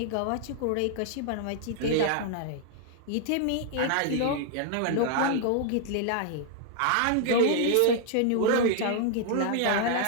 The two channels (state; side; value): different; both; correlation 0.00